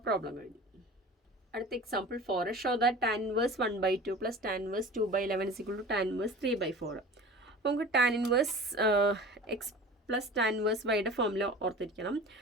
പ്രോബ്ലം കഴിഞ്ഞു. അടുത്ത example 4. Show that tan inverse 1/2 plus tan inverse 2/11 is equal to tan inverse 3/4. അപ്പോൾ നമുക്ക് tan inverse x plus tan inverse വൈയുടെ formula ഓർത്തിരിക്കണം.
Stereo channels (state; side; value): normal; both; correlation 0.38